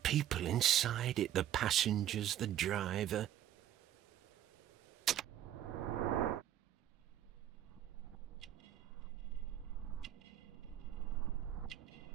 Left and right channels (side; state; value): left; quieter; 11.6 dB